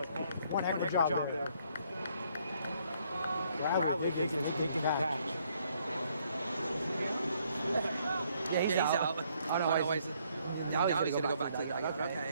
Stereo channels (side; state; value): both; inverted; correlation -0.68